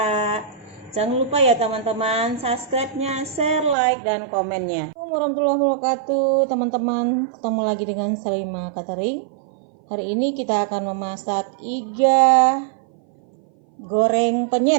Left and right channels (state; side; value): drops out; left; at 3.8 s